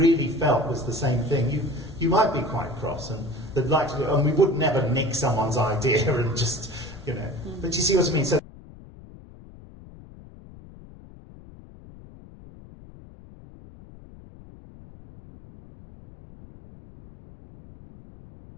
felt was the same thing. You might be quite cross, and we would never nick someone's idea and just, But you see what I mean? So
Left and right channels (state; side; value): noise; left; rumble, 19 dB below the sound